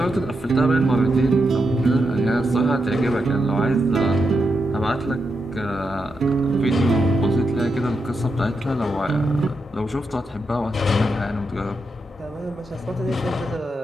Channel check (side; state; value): both; normal; correlation 0.85